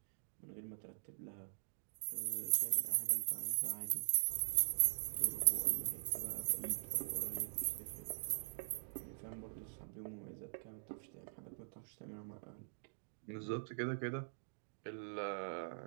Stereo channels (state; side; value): silent; left; digital silence